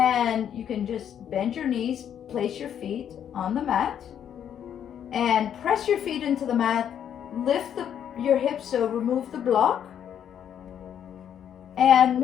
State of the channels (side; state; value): right; quieter; 9.2 dB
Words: you can just bend your knees, place your feet on the mat, and press your feet into the mat. Lift your hips, so remove the block, and